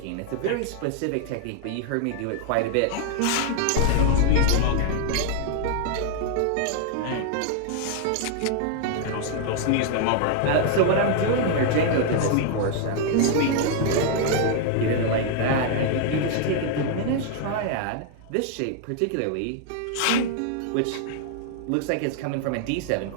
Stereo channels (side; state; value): both; different; correlation 0.00